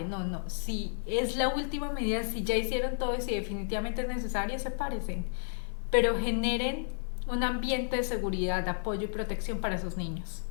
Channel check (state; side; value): silent; right; 57 dB below the other